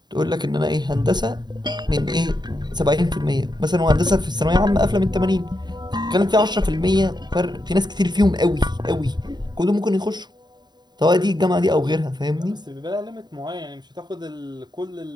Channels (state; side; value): late; left; 0.21 ms